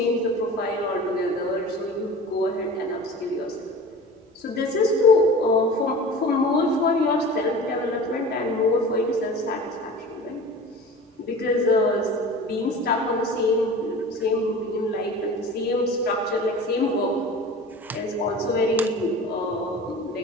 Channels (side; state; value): both; normal; correlation 0.37